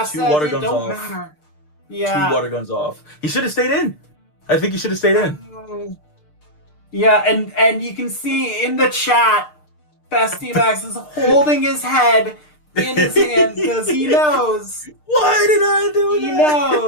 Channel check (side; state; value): right; late; 6.6 ms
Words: water guns off. Matter. Yeah. 2 water guns off. He should have stayed in. I think he should have stayed in. Yeah, and you can see in the chat, Bestiamax is holding his head in his hand because he knows. Why did I do that? He